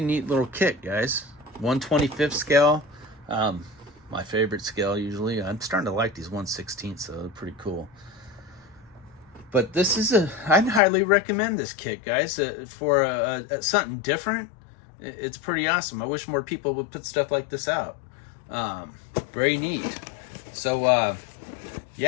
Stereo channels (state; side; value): drops out; right; at 10.8 s